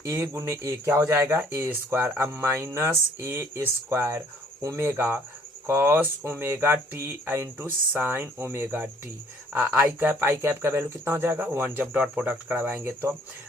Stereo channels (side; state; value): both; normal; correlation 0.59